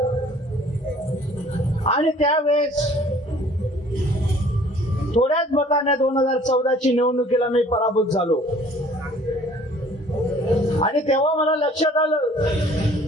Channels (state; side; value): normal; both; correlation 0.53